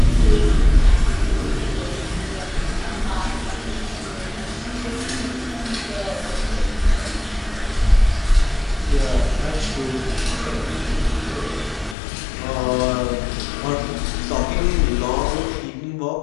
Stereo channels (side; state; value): right; drops out; at 12.0 s